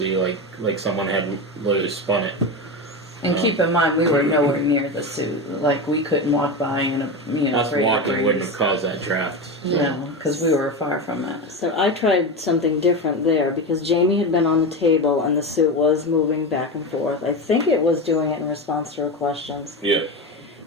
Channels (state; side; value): normal; both; correlation 0.19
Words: like someone had literally spun it. And keep in mind, we were nowhere near the suit. Like, we couldn't walk by in a Us walking wouldn't have caused that draft. No, because we were far from it. So I tried something different there because Jamie had been on the table and the suit was moving back and forth. I think it was doing it in response to her questions. Yeah.